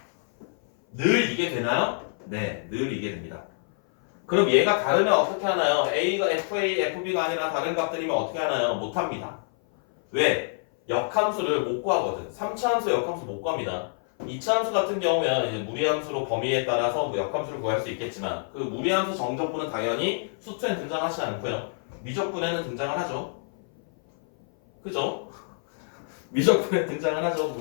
늘 이게 되나요? 네, 늘 이게 됩니다. 그럼 얘가 다르면 어떻게 하나요? A가 FA, FB가 아니라 다른 값들이면 어떻게 하나요? 못합니다. 왜? 역함수를 못 구하거든. 3차 함수 역함수 못 구합니다. 2차 함수 같은 경우면 이제 무리함수로 범위에 따라서 뭐 역함수를 구할 수 있겠지만 그 무리함수 정적분은 당연히 수투에 등장하지 않고요. 미적분에는 등장을 하죠. 그죠? 미적분에 등장을 하죠.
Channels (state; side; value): silent; right; 57 dB below the other